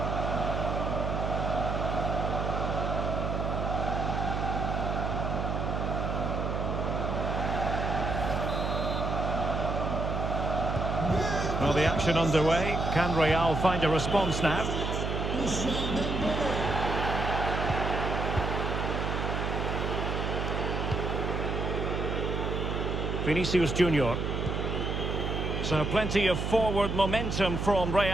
Well, the action underway. Can Real find a response now? Ousmane Dembélé. Viní Jr. So plenty of forward momentum from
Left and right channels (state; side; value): noise; right; hum, 1 dB below the sound